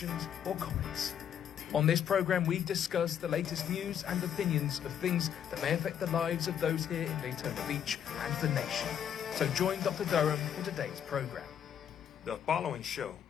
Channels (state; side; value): quieter; right; 9.0 dB